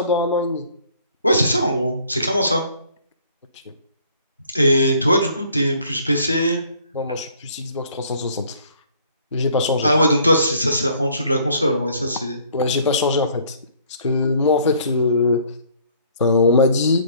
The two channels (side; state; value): both; inverted; correlation -0.59